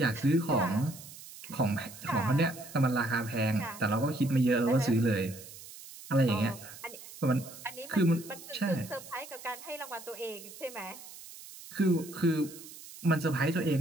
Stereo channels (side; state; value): right; noise; hiss, 16 dB below the sound